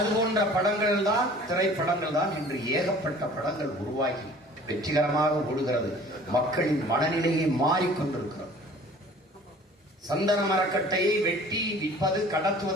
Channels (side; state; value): both; normal; correlation 0.48